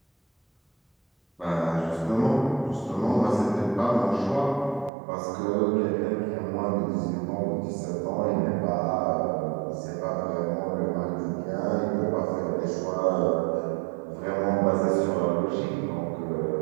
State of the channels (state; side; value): drops out; left; at 4.9 s